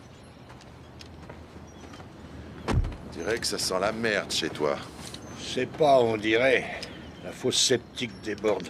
On dirait que ça sent la merde chez toi. C'est pas, on dirait. La fosse septique déborde.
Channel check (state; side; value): identical; both; correlation 1.00